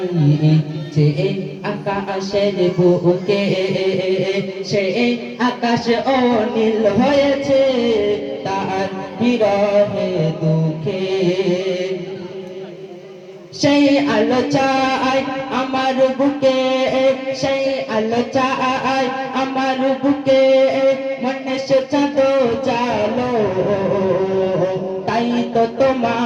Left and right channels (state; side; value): identical; both; correlation 1.00